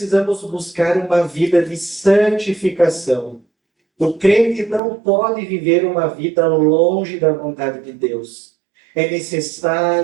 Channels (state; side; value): drops out; left; at 4.8 s